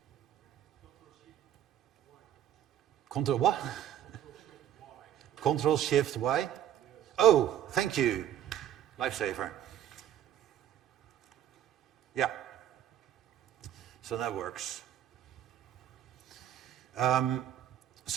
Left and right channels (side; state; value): left; quieter; 10.9 dB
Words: Control what? Control Shift Y? Oh, thank you. Lifesaver. Yeah. So that works.